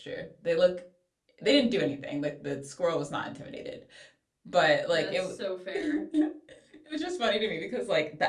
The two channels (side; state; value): both; identical; correlation 1.00